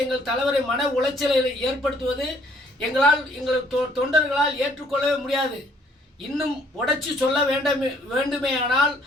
எங்கள் தலைவரை மன உளைச்சலை ஏற்படுத்துவது எங்கள் தொண்டர்களால் ஏற்றுக்கொள்ளவே முடியாது. இன்னும் உடைச்சி சொல்ல வேண்டுமேயானால்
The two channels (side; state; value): both; normal; correlation 0.63